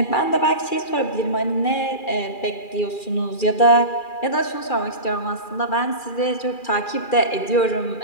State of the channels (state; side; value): late; right; 2.4 ms